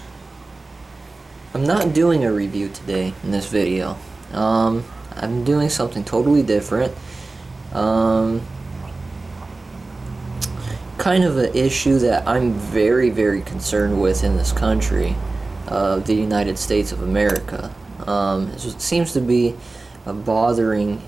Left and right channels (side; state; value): left; quieter; 3.4 dB